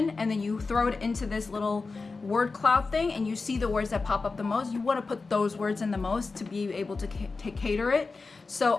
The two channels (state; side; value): quieter; right; 4.1 dB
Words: and then you throw it into this little word cloud thing and you see the words that pop up the most. You want to put those words in the most to be able to cater it.